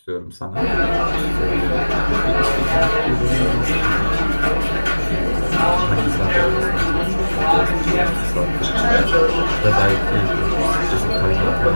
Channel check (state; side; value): inverted; both; correlation -1.00